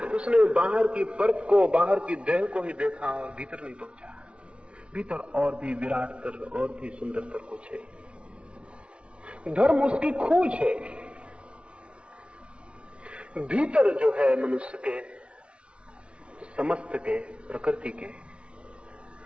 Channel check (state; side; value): late; left; 0.059 ms